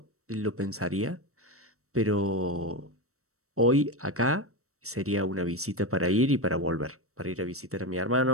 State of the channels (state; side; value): late; left; 0.64 ms